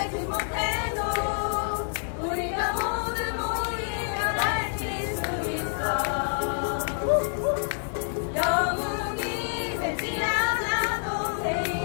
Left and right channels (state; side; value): silent; right; digital silence